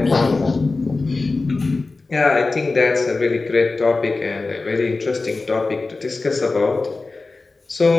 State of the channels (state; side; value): quieter; right; 3.6 dB